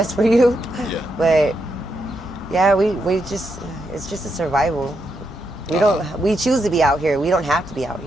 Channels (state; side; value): normal; both; correlation 0.82